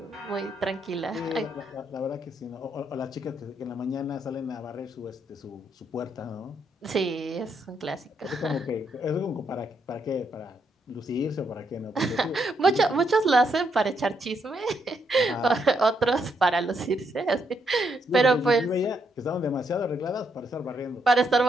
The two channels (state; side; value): normal; both; correlation 0.77